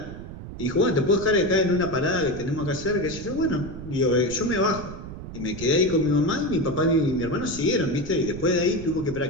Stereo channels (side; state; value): right; noise; rumble, 11 dB below the sound